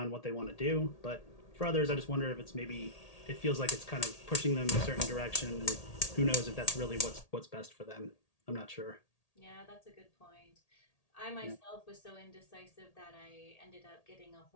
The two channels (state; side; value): late; right; 1.8 ms